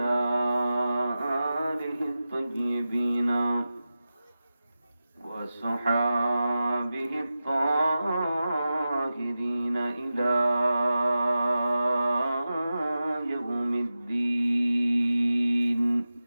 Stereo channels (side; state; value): both; inverted; correlation -0.94